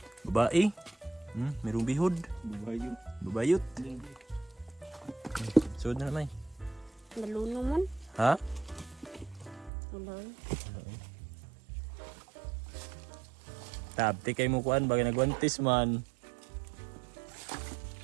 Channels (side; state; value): left; drops out; at 9.7 s